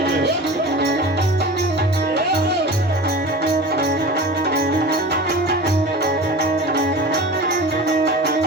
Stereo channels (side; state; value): both; normal; correlation 0.35